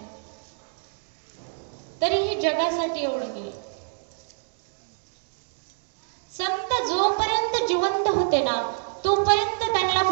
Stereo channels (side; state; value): left; silent; digital silence